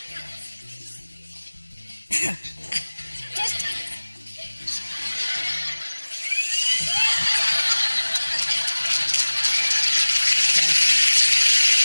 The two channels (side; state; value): both; inverted; correlation -1.00